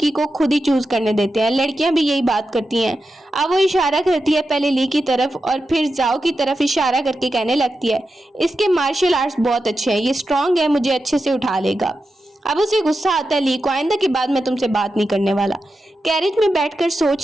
को खुद ही चूज करने देते हैं। लड़कियां भी यही बात करती हैं। अब वो इशारा करती है पहले ली की तरफ और फिर जाओ की तरफ इशारा करके कहने लगती है इसके मार्शल आर्ट्स बहुत अच्छे हैं, ये स्ट्रांग है, मुझे अच्छे से उठा लेगा। अब उसे गुस्सा आता है ली को, आइंदा के बाद मैं तुमसे बात नहीं करने वाला। कैरेज में बैठकर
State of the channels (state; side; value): normal; both; correlation 0.90